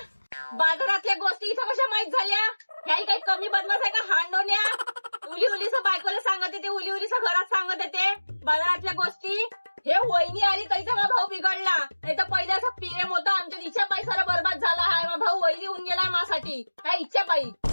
बाजारातल्या गोष्टी इथं कशा माहित झाल्या. ह्याही काही कमी बदमाश आहे का हांडोन्या. उलीस बायकोला सांगत येते, उलीस घरात सांगत येते बाजारातल्या गोष्टी. हे वहिनी आली तरीचा माझा भाऊ बिघडला. नाही तर पहिले असं प्रेम होतं आमच्या. इच्छा पायी सारा बरबाद झाला आहे. माझा भाऊ वहिनी होऊन गेलाय माझ्यासाठी. काय इच्छा पायी.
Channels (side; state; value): both; inverted; correlation -1.00